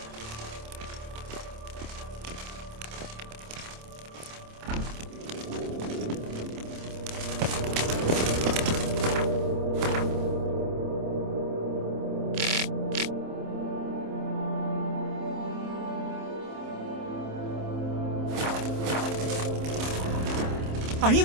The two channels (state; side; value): late; left; 27 ms